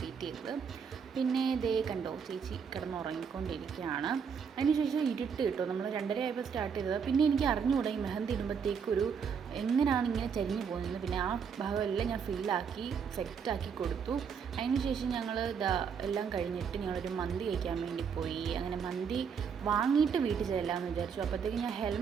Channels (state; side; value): quieter; left; 6.6 dB